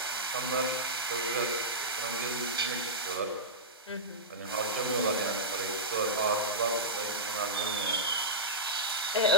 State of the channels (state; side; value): normal; both; correlation -0.12